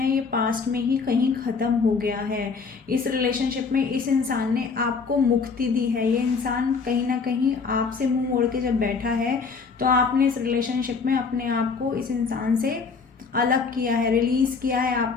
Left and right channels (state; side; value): quieter; right; 5.0 dB